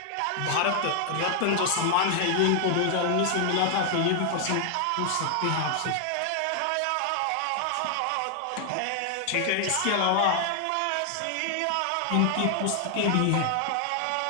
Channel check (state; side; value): different; both; correlation 0.00